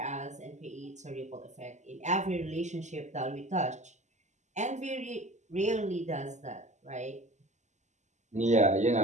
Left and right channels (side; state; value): left; late; 0.34 ms